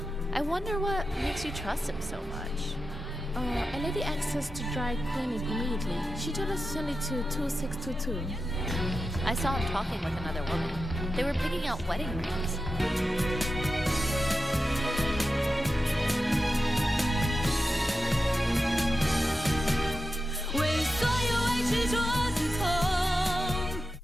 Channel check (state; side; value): normal; both; correlation 0.91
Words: I wonder what makes you trust him so much. A lady asked us to dry clean it immediately. She told us to send it to 2622. I saw him talking with another woman. They were picking out wedding rings.